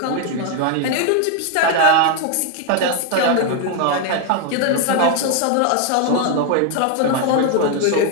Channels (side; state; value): both; different; correlation 0.01